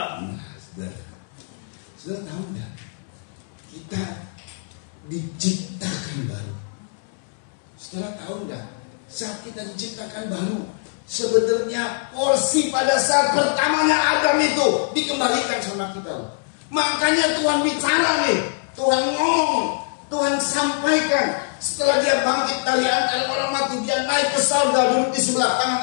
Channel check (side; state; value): right; silent; 57 dB below the other